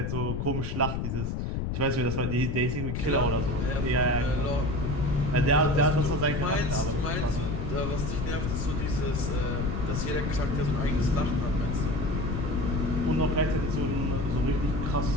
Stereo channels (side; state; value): left; noise; rumble, 2 dB below the sound